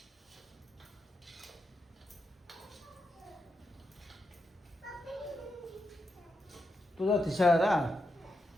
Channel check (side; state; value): both; normal; correlation 0.86